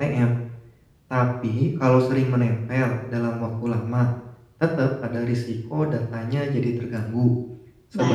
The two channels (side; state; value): both; identical; correlation 1.00